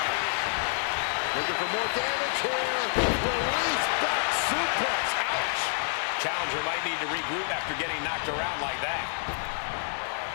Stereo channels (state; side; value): silent; right; 59 dB below the other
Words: Looking for more damage here. Release back suplex. Ouch. Challenger might need to regroup after getting knocked around like that.